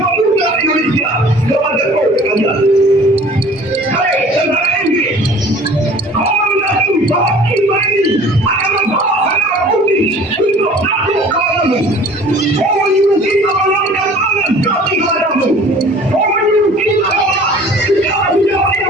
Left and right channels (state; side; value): normal; both; correlation 0.48